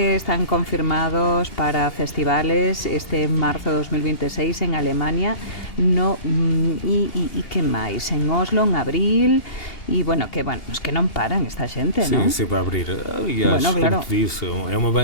están confirmados para festivales este marzo de 2026 en Alemania, y que máis, en Oslo en abril, e bueno, es que non paran esta xente, non? Sim, sempre a abrir. Aliás, bueno, claro, como te disse, é uma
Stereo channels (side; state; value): right; late; 2.8 ms